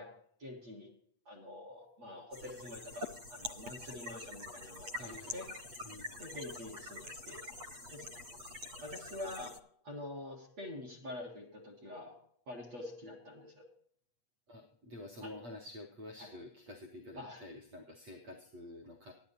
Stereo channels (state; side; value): late; left; 8.3 ms